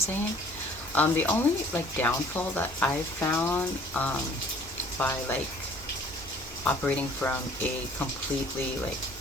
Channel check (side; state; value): both; normal; correlation 0.54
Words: The only like downfall that I've found by like operating from a completely like